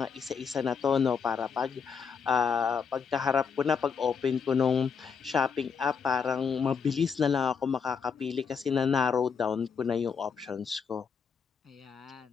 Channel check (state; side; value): quieter; right; 6.2 dB